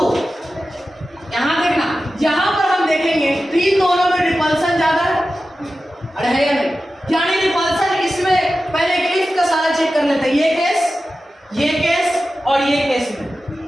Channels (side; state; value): both; normal; correlation 0.93